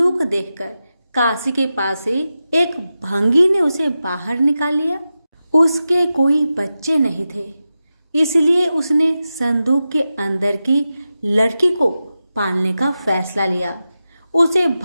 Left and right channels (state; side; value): inverted; both; correlation -0.92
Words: देखकर काशी के पास से एक भंगी ने उसे बाहर निकाल लिया। उसके कोई बच्चे नहीं थे, इसलिए उसने संदूक के अंदर की लड़की को पालने का फैसला लिया। उसे